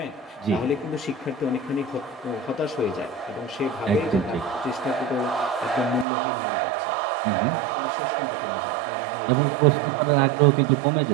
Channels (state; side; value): drops out; left; at 6.1 s